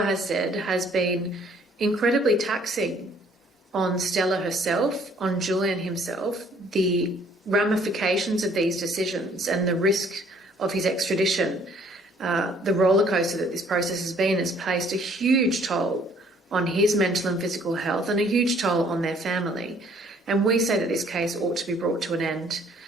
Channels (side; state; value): both; normal; correlation 0.60